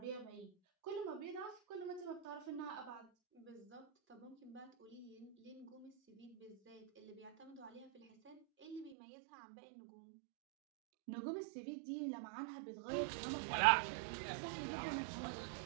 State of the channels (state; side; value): drops out; left; at 9.0 s